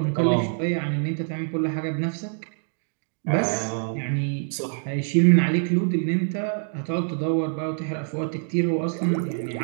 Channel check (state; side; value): silent; left; 62 dB below the other